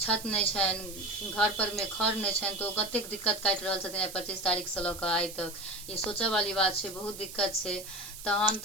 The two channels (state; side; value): noise; right; hiss, 12 dB below the sound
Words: नहीं छनि, घर पर में खर नहीं छनि, तो कतेक दिक्कत काटि रहल छथिन 25 तारीख से लऽ आइ तक। ये सोचऽ वाली बात छै, बहुत दिक्कत छै। तहन